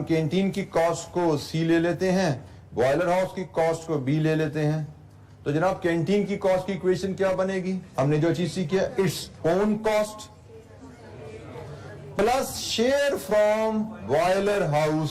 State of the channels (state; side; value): identical; both; correlation 1.00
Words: कैंटीन की कॉस्ट को सी ले लेते हैं, बॉयलर हाउस की कॉस्ट को बी ले लेते हैं। तो जनाब कैंटीन की कॉस्ट की इक्वेशन क्या बनेगी? हमने जो चीज सीखी है, its own cost plus share from boiler